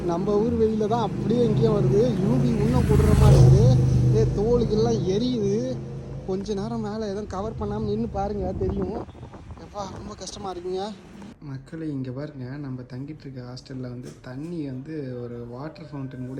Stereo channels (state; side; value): identical; both; correlation 1.00